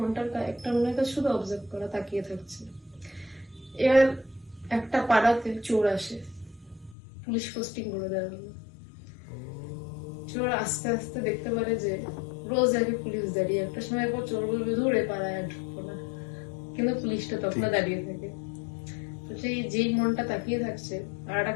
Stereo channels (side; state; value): right; drops out; at 7.0 s